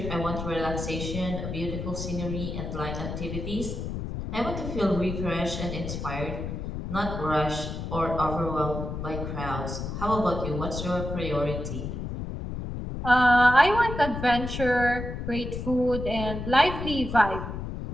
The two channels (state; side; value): noise; left; rumble, 5 dB below the sound